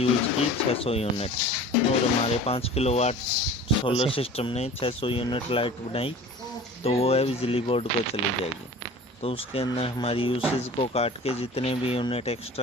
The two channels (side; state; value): both; normal; correlation 0.42